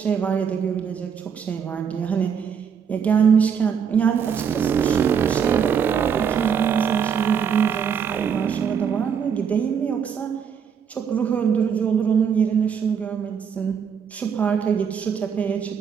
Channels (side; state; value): left; quieter; 7.2 dB